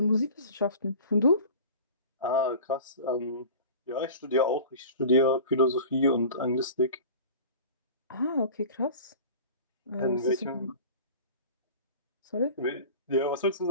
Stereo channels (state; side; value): inverted; both; correlation -0.39